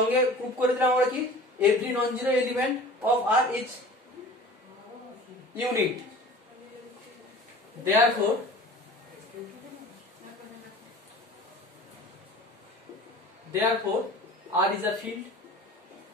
প্রুভ করে দিলাম আমরা কি every non zero element of R is unit. therefore R is a field.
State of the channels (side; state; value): both; normal; correlation 0.42